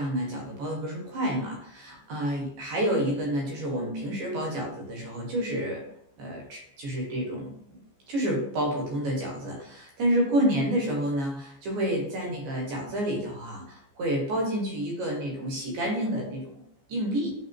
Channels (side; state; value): left; late; 14 ms